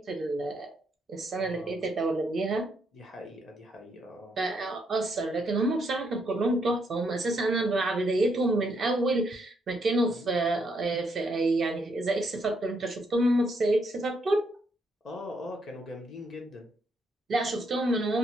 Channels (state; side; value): normal; both; correlation 0.75